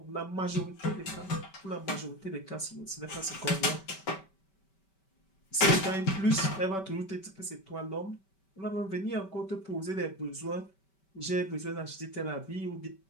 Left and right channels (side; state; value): right; late; 5.2 ms